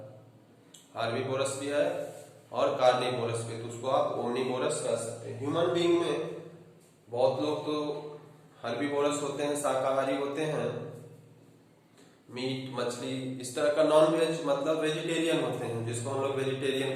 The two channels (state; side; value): identical; both; correlation 1.00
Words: हार्बिवोरस भी है और कार्निवोरस भी, तो उसको आप ओमनिवोरस कह सकते हैं। ह्यूमन बीइंग में बहुत लोग तो हर्बिवोरस होते हैं, शाकाहारी होते हैं, मीट मछली इस तरह का, नॉन वेज मतलब वेजिटेरियन होते हैं, जिसको हम लोग वेजिटेरियन